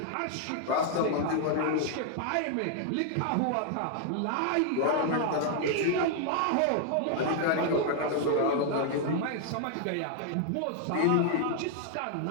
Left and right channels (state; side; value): different; both; correlation 0.00